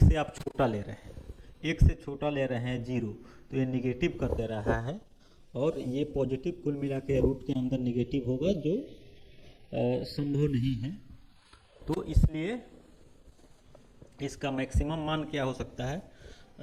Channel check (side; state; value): both; identical; correlation 1.00